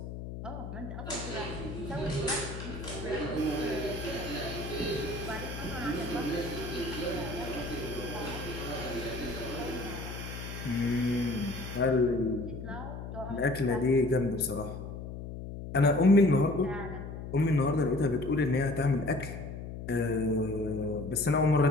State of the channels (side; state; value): left; noise; hum, 8 dB below the sound